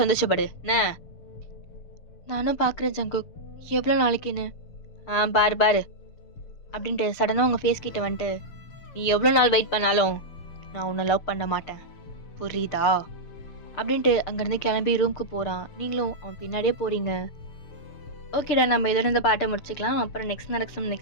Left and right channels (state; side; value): late; right; 6.7 ms